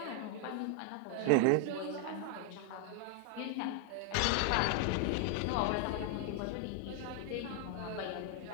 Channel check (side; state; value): both; different; correlation 0.00